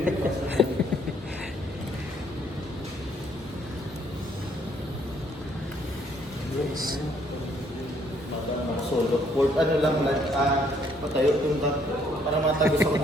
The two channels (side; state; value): both; normal; correlation 0.66